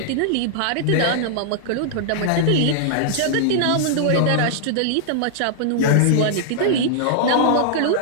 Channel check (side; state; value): both; different; correlation -0.01